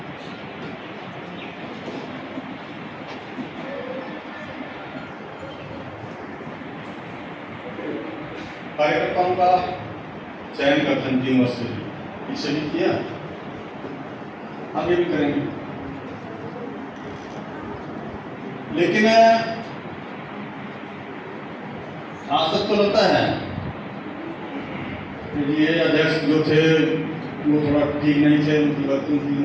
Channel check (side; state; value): both; identical; correlation 1.00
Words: कार्यकर्ताओं का चयन करते हैं 3 वर्ष से, इससे भी किया, आगे भी करेंगे। लेकिन आज तक तो लगता है कि ये अध्यक्ष जो थे वो थोड़ा ठीक नहीं थे, उनकी वर्किंग ठीक